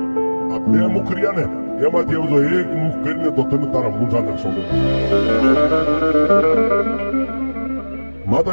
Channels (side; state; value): both; inverted; correlation -1.00